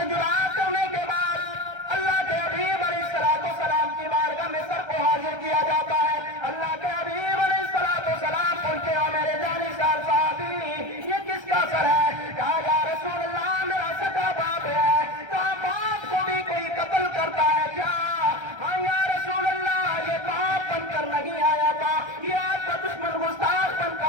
جدا کرنے کے بعد اللہ کے حبیب علیہ السلام کی بارگاہ میں سر کو حاضر کیا جاتا ہے۔ اللہ کے حبیب علیہ السلام پوچھتے ہو میرے جانشار صحابی یہ کس کا سر ہے؟ کہا یا رسول اللہ میرا سگا باپ ہے۔ کہا باپ کو بھی کوئی قتل کرتا ہے کیا؟ ہاں یا رسول اللہ یہ باپ بن کر نہیں آیا تھا، یہ آپ کا دشمن گستاخ بن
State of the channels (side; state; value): left; late; 1.3 ms